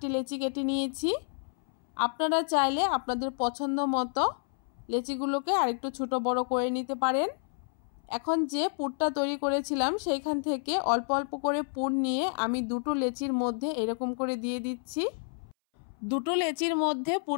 লেচি কেটে নিয়েছি। আপনারা চাইলে আপনাদের পছন্দ মতো লেচিগুলোকে আরেকটু ছোট বড় করে নিতে পারেন। এখন যে পুরটা তৈরি করেছিলাম সেইখান থেকে অল্প অল্প করে পুর নিয়ে আমি 2টো লেচির মধ্যে এরকম করে দিয়ে দিচ্ছি। 2টো লেচির মধ্যে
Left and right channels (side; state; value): right; silent; 58 dB below the other